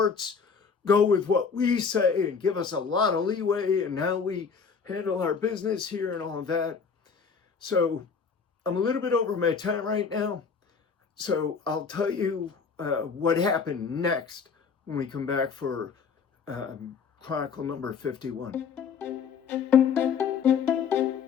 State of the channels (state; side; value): quieter; right; 5.9 dB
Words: go with what we say and give us a lot of leeway in how we handle our business here and all of that. So I'm a little bit over my time right now. So I'll tell you what happened next when we come back for Chronicle number 51.